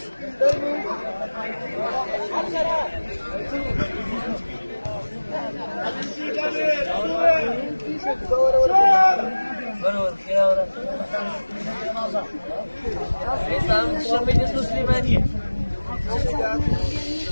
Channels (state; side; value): inverted; both; correlation -1.00